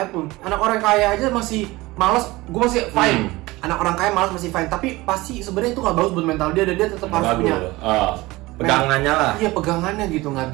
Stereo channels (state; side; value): quieter; left; 20.4 dB